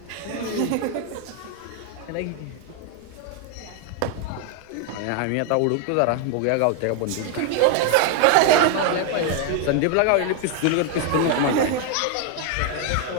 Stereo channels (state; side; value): different; both; correlation 0.01